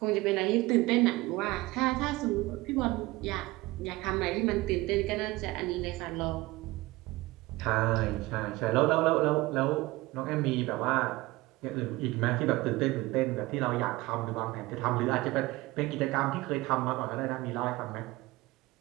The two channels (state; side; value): quieter; left; 20.3 dB